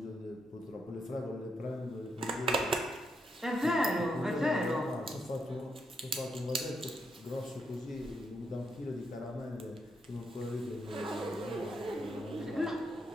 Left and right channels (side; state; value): both; normal; correlation 0.80